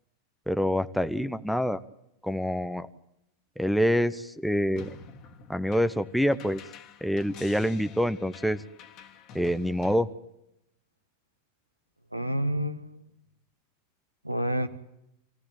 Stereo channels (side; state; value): both; normal; correlation 0.75